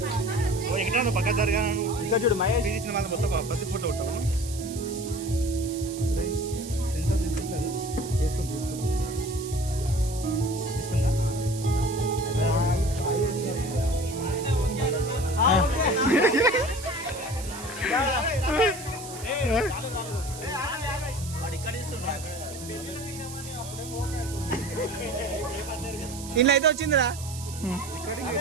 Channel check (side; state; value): right; noise; hiss, 13 dB below the sound